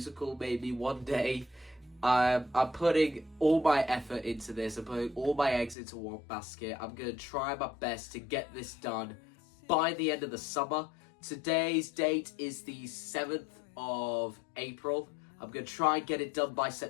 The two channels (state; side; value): drops out; right; at 5.8 s